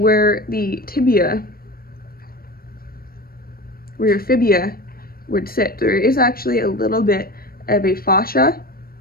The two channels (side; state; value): right; late; 0.43 ms